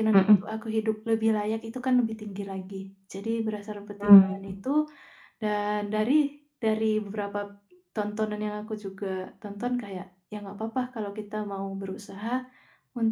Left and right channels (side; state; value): both; identical; correlation 1.00